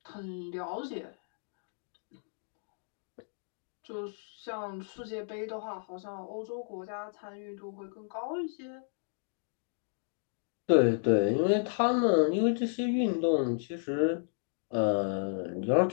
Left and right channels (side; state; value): right; silent; digital silence